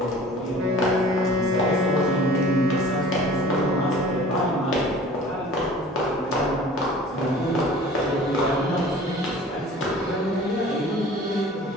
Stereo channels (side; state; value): both; normal; correlation 0.45